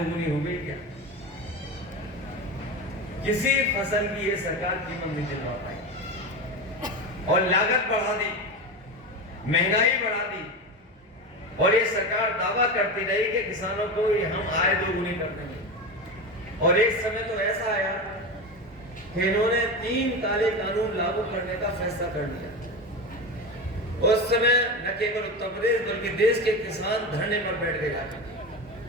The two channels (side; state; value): both; normal; correlation 0.22